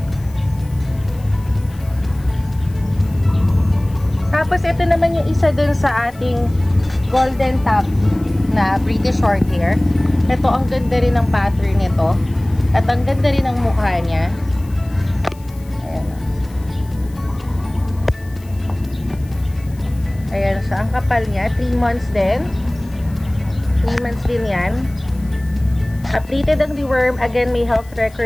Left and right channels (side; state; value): left; noise; hiss, 26 dB below the sound